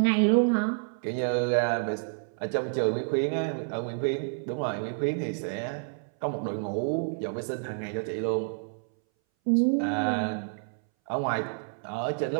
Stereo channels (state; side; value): silent; left; 59 dB below the other